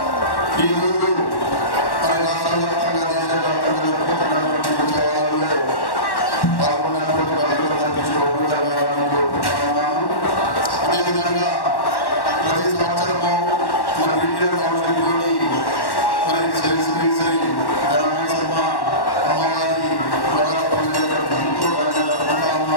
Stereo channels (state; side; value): late; right; 1.1 ms